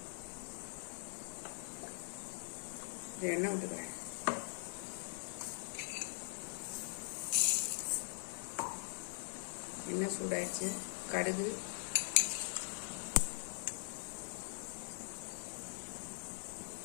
எண்ணெய் விட்டுக்கிறேன். எண்ணெய் சூடாயிடுச்சு. கடுகு,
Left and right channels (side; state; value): right; silent; digital silence